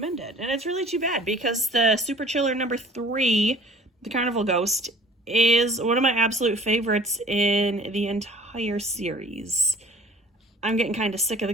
it. And it's really too bad because the Super Chiller number 3, The Carnival Ghost, is one of my absolute favorites in the entire series. I'm getting kind of sick of the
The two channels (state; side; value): normal; both; correlation 0.49